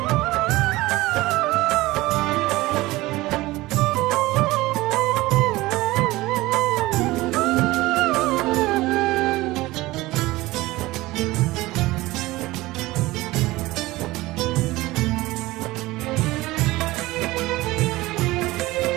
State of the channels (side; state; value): left; quieter; 19.2 dB